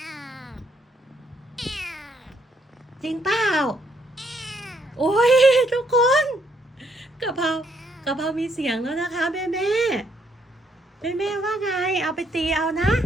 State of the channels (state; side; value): normal; both; correlation 0.72